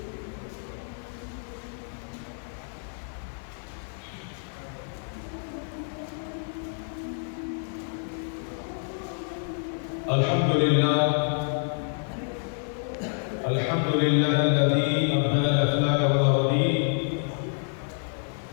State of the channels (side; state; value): right; silent; 59 dB below the other